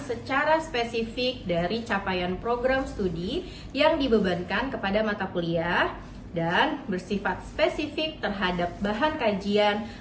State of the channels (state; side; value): identical; both; correlation 1.00